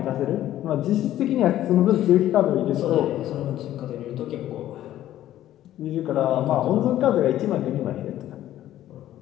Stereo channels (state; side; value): quieter; right; 13.0 dB